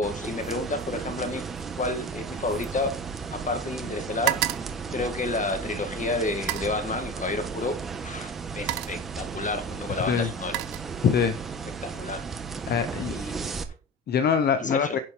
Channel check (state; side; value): normal; both; correlation 0.31